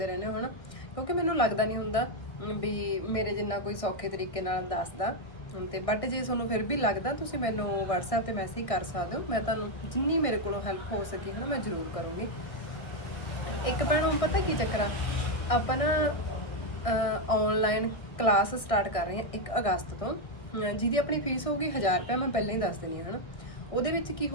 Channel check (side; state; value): right; late; 1.6 ms